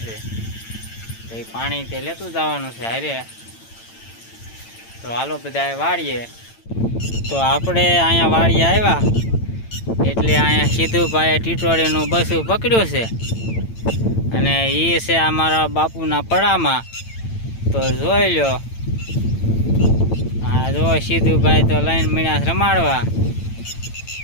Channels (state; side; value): late; right; 8.9 ms